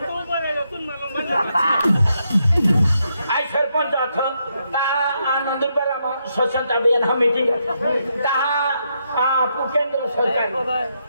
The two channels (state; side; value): inverted; both; correlation -0.80